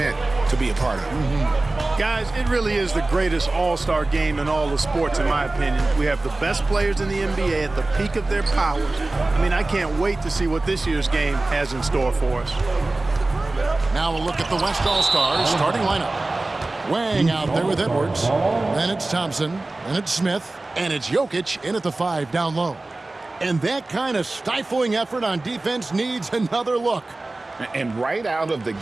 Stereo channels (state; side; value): quieter; left; 3.0 dB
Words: to be a part of. Guys, it really is the greatest all-star game in all the sports, in my opinion. We have the best players in the NBA at the peak of their powers. I mean, I can't wait to see what this year's game has in store for us. Now we'll look at the West All-Stars starting lineup. Wang out there with Edwards. Then it's Thompson. Then it's Smith. And it's Jokic in at the 5 down low. And that kind of stifling effort on defense needs another look. And right out of the